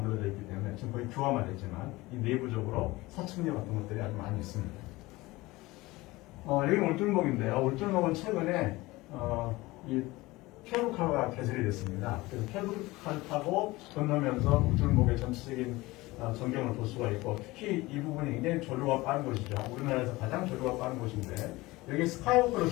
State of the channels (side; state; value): right; quieter; 20.5 dB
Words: 있기 때문에 지금 거의 규화화됐지만 이 내부적으로 사층류 같은 것들이 아주 많이 있습니다. 여기는 울줄목인데요. 울줄목은 최근에 이 케이블카가 개설이 됐습니다. 그래서 케이블카를 타고 건너면서 울줄목의 전체적인 전경을 볼 수가 있고 특히 이 부분이 굉장히 조류가 빠른 곳이죠. 우리나라에서 가장 조류가 빠른 곳인데 여기 스카이워크를